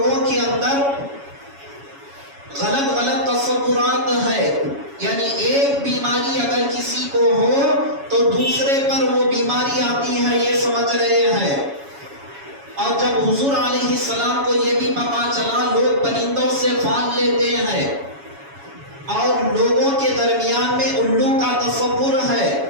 کے اندر غلط غلط تصورات ہے، یعنی ایک بیماری اگر کسی کو ہو تو دوسرے پر وہ بیماری آتی ہے، یہ سمجھ رہے ہیں۔ اور جب حضور علیہ السلام کو یہ بھی پتا چلا، لوگ پرندوں سے پھال لیتے ہیں اور لوگوں کے درمیان میں الو کا تصور ہے،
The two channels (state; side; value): late; left; 7.2 ms